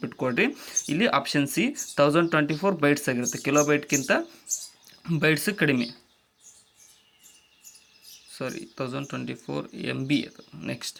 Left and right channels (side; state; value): both; identical; correlation 1.00